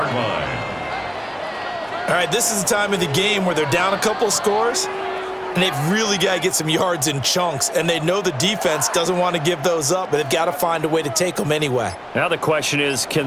line. All right, this is the time of the game where they're down a couple scores, and they've really got to get some yards in chunks, and they know the defense doesn't want to give those up, but they've got to find a way to take them anyway. Now the question is, can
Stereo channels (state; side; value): identical; both; correlation 1.00